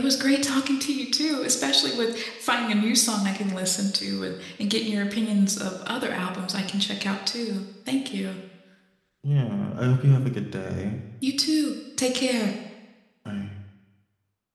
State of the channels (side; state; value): both; identical; correlation 1.00